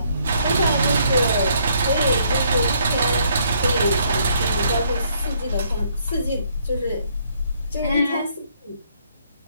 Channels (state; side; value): inverted; both; correlation -0.68